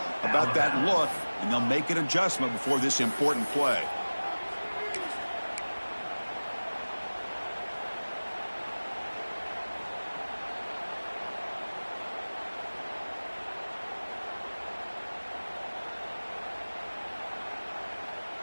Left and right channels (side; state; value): both; inverted; correlation -1.00